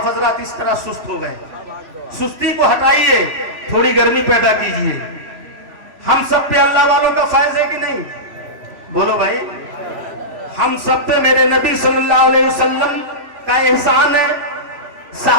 حضرات اس طرح سست ہو گئے، سستی کو ہٹائیے، تھوڑی گرمی پیدا کیجئے۔ ہم سب پہ اللہ والوں کا فیض ہے کہ نہیں؟ بولو بھائی، ہم سب پہ میرے نبی صلی اللہ علیہ وسلم کا احسان ہے،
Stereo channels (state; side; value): late; left; 3.0 ms